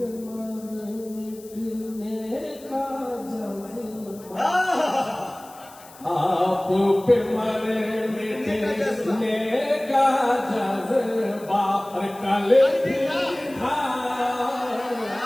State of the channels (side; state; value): left; noise; hiss, 22 dB below the sound